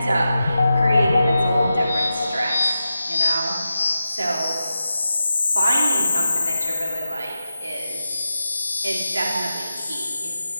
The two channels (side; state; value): both; inverted; correlation -0.91